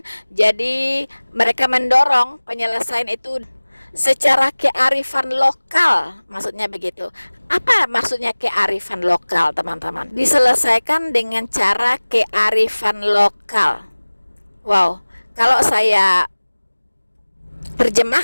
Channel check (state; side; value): inverted; both; correlation -1.00